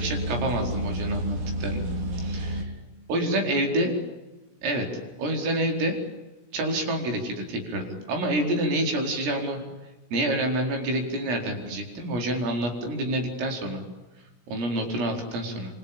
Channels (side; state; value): left; late; 17 ms